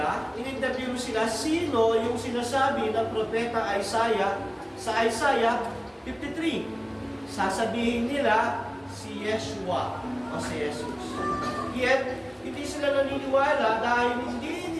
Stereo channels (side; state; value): both; identical; correlation 1.00